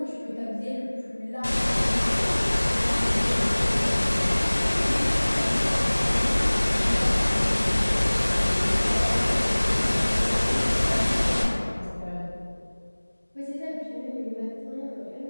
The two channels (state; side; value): inverted; both; correlation -1.00